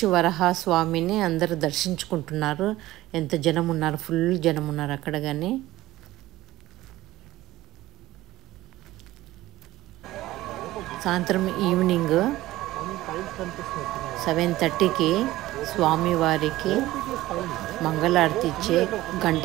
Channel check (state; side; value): quieter; left; 16.7 dB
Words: వరహాస్వామిని అందరూ దర్శించుకుంటున్నారు. ఎంత జనం ఉన్నారు, ఫుల్ జనం ఉన్నారు అక్కడ. కానీ సాయంత్రం ఈవినింగ్ 7:30కి స్వామివారికి మంగళారతి ఇచ్చే